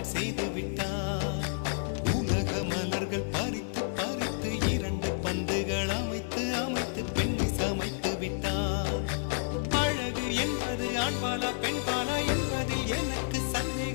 செய்து விட்டார். உலக மலர்கள் பறித்து பறித்து 2 பந்துகள் அமைத்து அமைத்து பெண்ணை சமைத்து விட்டார். அழகு என்பது ஆண்பாலா பெண்பாலா என்பதில் எனக்கு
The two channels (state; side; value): silent; right; digital silence